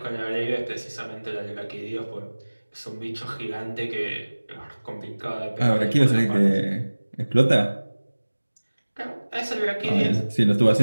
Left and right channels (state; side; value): inverted; both; correlation -1.00